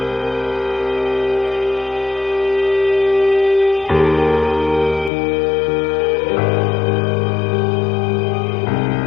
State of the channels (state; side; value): drops out; right; at 5.1 s